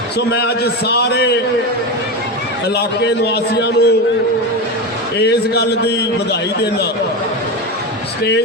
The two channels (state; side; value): normal; both; correlation 0.19